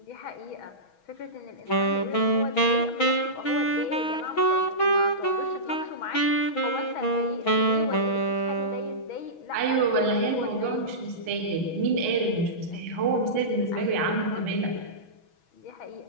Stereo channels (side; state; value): right; late; 6.2 ms